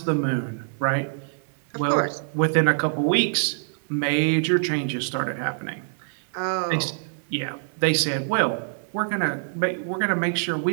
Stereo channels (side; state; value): left; silent; digital silence